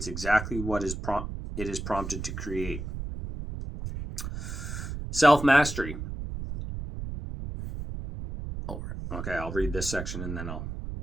exactly what it is prompted to create. Self-mastery. Okay, I'll read this section and then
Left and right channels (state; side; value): noise; right; rumble, 7 dB below the sound